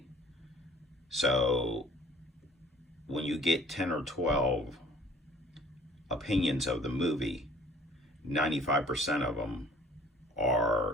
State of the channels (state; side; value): normal; both; correlation 0.52